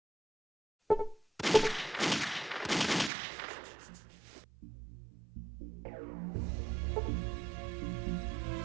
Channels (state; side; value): drops out; left; at 3.1 s